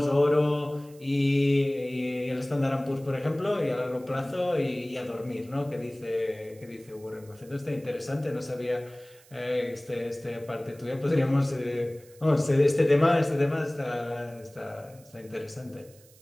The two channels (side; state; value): right; noise; hiss, 26 dB below the sound